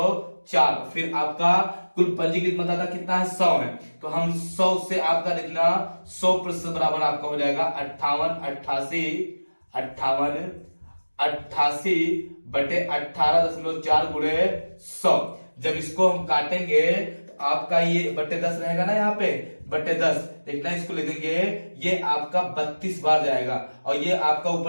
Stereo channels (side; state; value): both; inverted; correlation -1.00